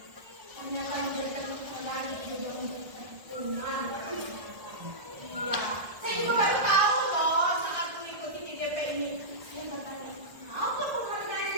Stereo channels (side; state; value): left; late; 1.3 ms